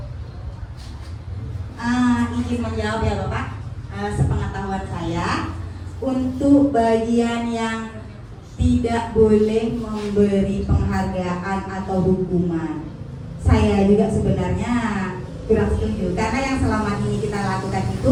izin menjawab ya Bapak. Sepengetahuan saya, untuk bagian yang tidak boleh memberi penghargaan atau hukuman, saya juga sebenarnya kurang setuju, karena yang selama ini kita lakukan itu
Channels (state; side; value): identical; both; correlation 1.00